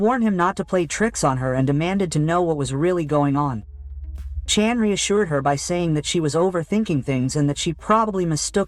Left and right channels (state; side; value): identical; both; correlation 1.00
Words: him not to play tricks on her and demanded to know what was really going on. Chan reassured her by saying that she was overthinking things and that she probably